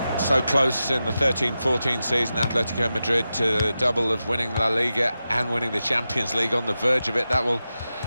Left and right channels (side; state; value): both; inverted; correlation -0.91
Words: So close in the 13-14 season, Atletico Madrid, to the double of winning La Liga and winning the Champions League. On the verge of it. That will